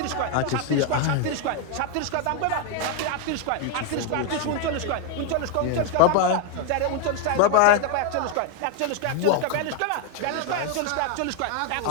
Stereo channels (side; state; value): both; different; correlation 0.00